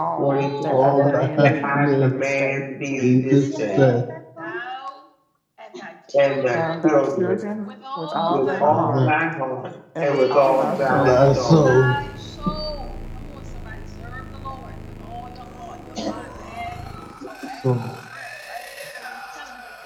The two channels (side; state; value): both; identical; correlation 1.00